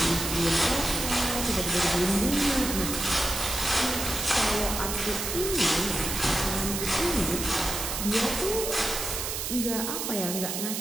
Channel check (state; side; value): noise; right; hiss, 3 dB below the sound